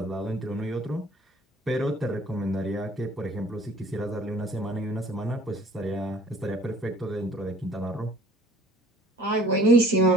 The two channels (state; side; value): normal; both; correlation 0.52